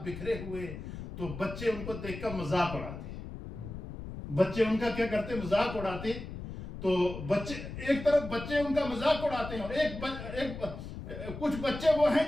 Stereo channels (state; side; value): noise; left; rumble, 9 dB below the sound